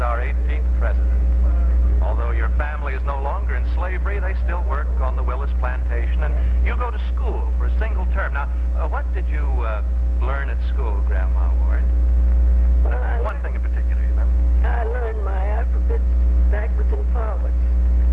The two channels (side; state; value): both; identical; correlation 1.00